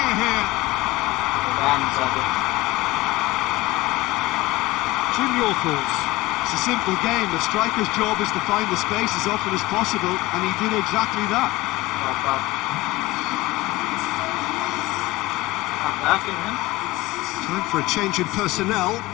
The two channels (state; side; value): quieter; right; 19.3 dB